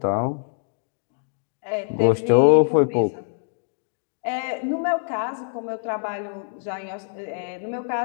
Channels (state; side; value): silent; right; digital silence